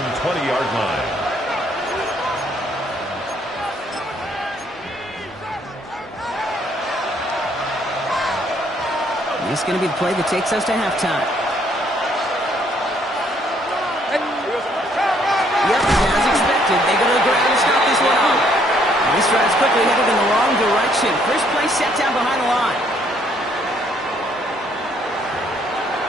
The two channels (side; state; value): both; normal; correlation 0.67